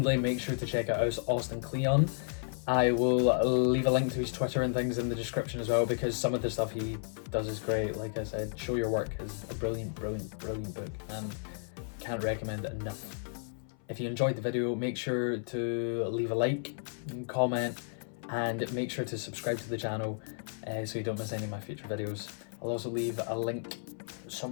make sure to check out Austin Kleon. I will leave a link to his Twitter and things in the description as well, because some of the stuff he does is great. Like I said, Show Your Work is a brilliant book, and can't recommend it enough. If you enjoyed the video, make sure to leave a like and comment, and make sure to subscribe to the channel so you don't miss any of my future videos. I'll also leave a link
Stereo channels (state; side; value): silent; right; 56 dB below the other